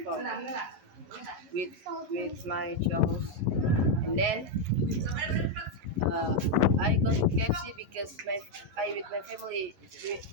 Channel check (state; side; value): late; left; 11 ms